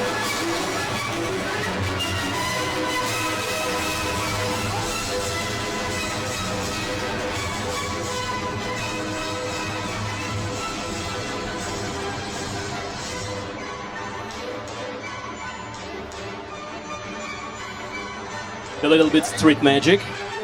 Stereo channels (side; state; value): both; identical; correlation 1.00